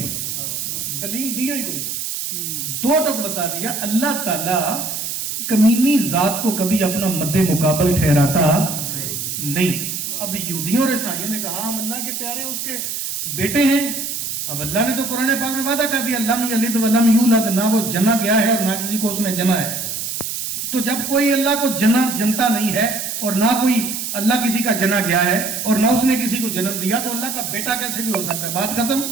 دلیل دیا ہی کوئی، دو ٹک بتا دیا۔ اللہ تعالیٰ کمینی ذات کو کبھی اپنا مد مقابل ٹھہراتا نہیں۔ اب یہودیوں اور عیسائیوں نے کہا ہم اللہ کے پیارے اس کے بیٹے ہیں، اب اللہ نے تو قرآن پاک میں وعدہ کر دیا لم یلد ولم یولد، نہ وہ جنا گیا ہے اور نہ کسی کو اس نے جنا ہے۔ تو جب کوئی اللہ کو جنتا نہیں ہے اور نہ کوئی اللہ کسی کا جنا گیا ہے اور نہ اس نے کسی کو جنم دیا، تو اللہ کا بیٹا کیسے بھی ہو سکتا ہے؟ بات ختم۔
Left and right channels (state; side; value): noise; right; hiss, 4 dB below the sound